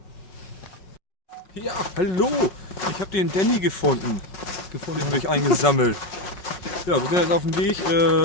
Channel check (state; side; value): late; right; 5.5 ms